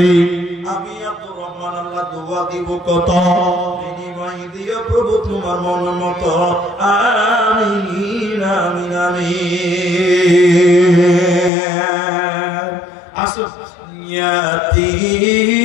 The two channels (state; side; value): drops out; right; at 11.5 s